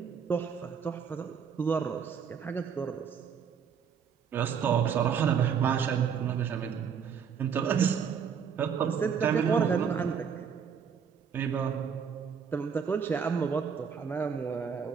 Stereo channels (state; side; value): quieter; left; 7.1 dB